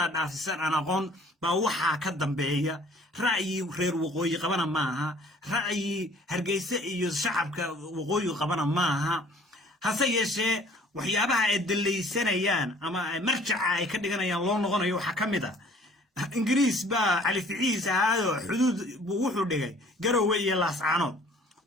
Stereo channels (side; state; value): both; normal; correlation 0.53